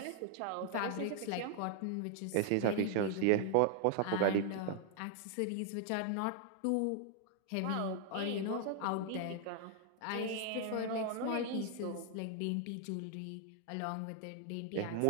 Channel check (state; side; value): different; both; correlation 0.00